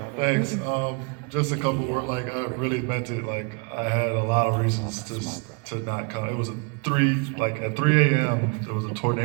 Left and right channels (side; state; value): left; quieter; 34.5 dB